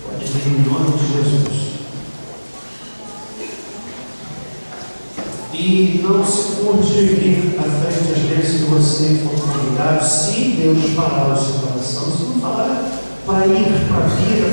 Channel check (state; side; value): inverted; both; correlation -1.00